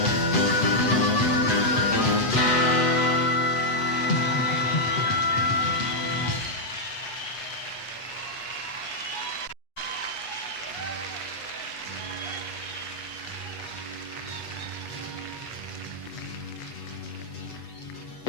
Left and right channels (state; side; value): late; right; 8.0 ms